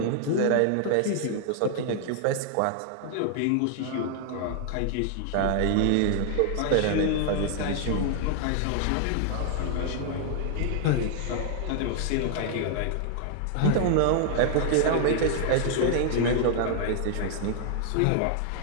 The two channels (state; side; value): different; both; correlation 0.00